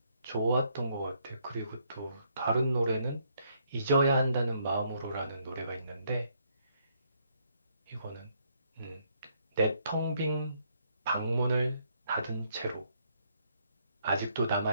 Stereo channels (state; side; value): inverted; both; correlation -0.71